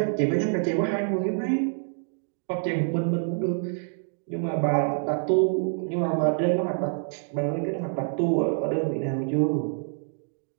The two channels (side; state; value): left; silent; 60 dB below the other